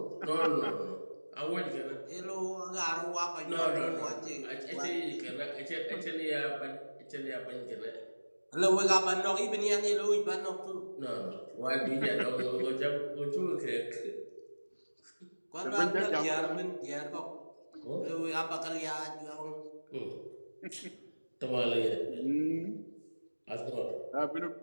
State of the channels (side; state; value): both; inverted; correlation -1.00